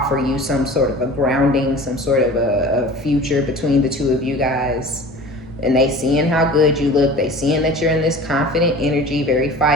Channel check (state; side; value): normal; both; correlation 0.40